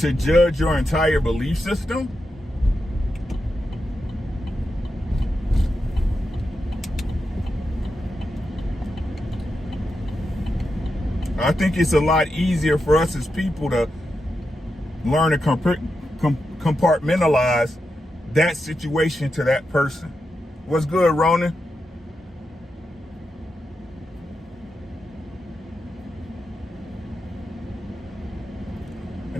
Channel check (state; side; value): normal; both; correlation 0.87